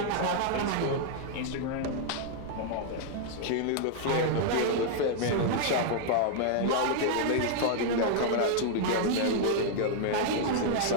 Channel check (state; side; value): different; both; correlation -0.01